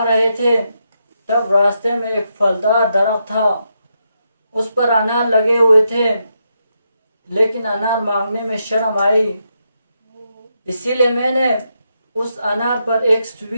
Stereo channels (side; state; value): both; inverted; correlation -0.82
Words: رہے تھے تب راستے میں ایک پھلدار درخت تھا، اس پر انار لگے ہوئے تھے، لیکن انار مانگنے میں شرم آئی، اسی لیے میں نے اس انار پر ایک